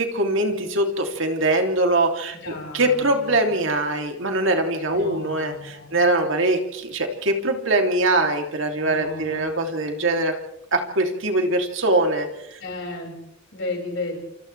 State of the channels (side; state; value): both; normal; correlation -0.11